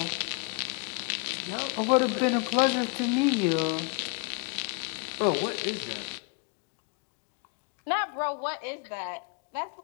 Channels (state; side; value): quieter; right; 32.0 dB